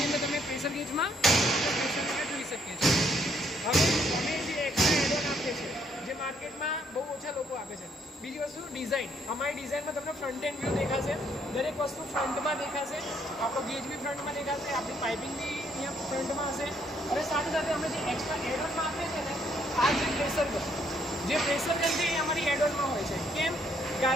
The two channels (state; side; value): normal; both; correlation 0.69